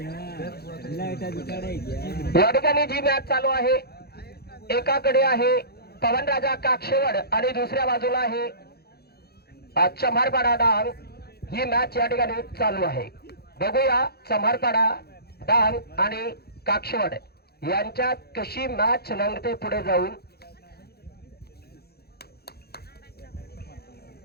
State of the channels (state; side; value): late; right; 0.46 ms